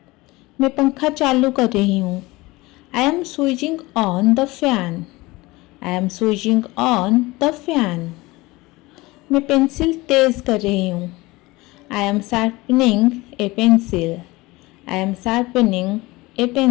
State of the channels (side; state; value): right; quieter; 21.4 dB